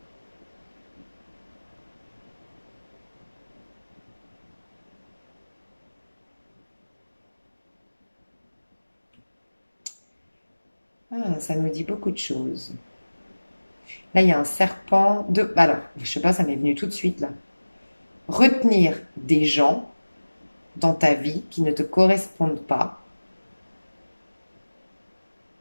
Ah, ça nous dit beaucoup de choses. Là, il y a un serpent de... Alors, je sais pas, ça m'est venu tout de suite là. Retenir des gens dans ta vie qui ne te correspondent pas,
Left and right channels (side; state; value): both; inverted; correlation -1.00